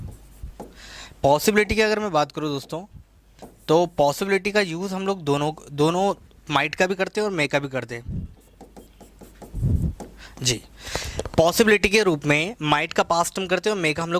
पॉसिबिलिटी की अगर मैं बात करूँ दोस्तों, तो पॉसिबिलिटी का यूज़ हम लोग दोनों दोनों माइट का भी करते हैं और मे का भी करते हैं जी। पॉसिबिलिटी के रूप में माइट का पास्ट हम करते हैं और मे का हम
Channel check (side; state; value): both; identical; correlation 1.00